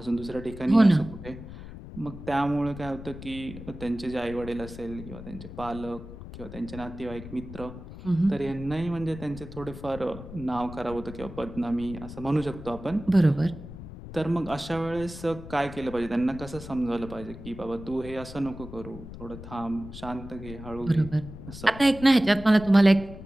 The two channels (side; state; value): left; noise; rumble, 13 dB below the sound